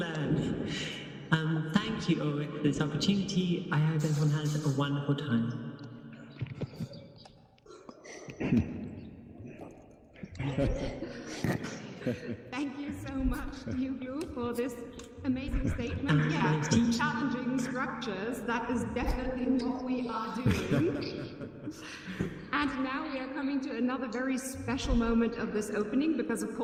Thank you, Ulrich, for this opportunity. I hope everyone has a wonderful time. Thank you so much, Tea Uglow, for this amazing statement. Yeah, challenging structures, that is definitely what we are doing. And now we are coming to another very special moment of this opening, because of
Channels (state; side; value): identical; both; correlation 1.00